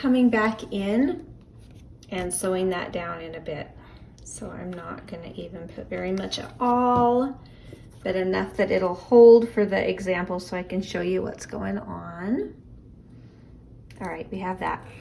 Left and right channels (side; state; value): both; identical; correlation 1.00